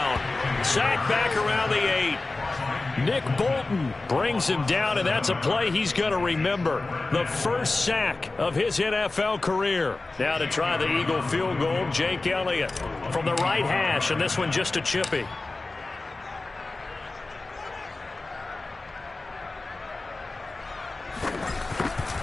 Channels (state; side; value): quieter; right; 3.3 dB